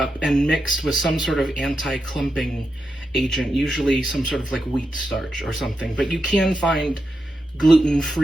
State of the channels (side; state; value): both; normal; correlation 0.86